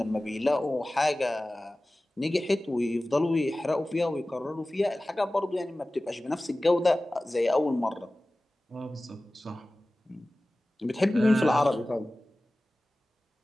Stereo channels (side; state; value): both; normal; correlation 0.97